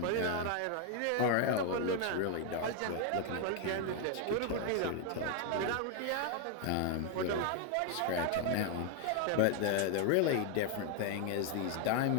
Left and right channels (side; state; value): both; different; correlation 0.01